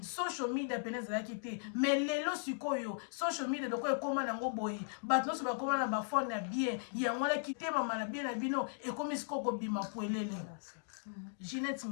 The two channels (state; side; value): silent; right; digital silence